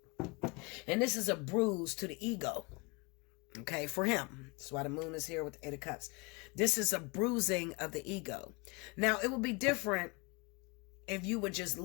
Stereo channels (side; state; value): right; quieter; 28.6 dB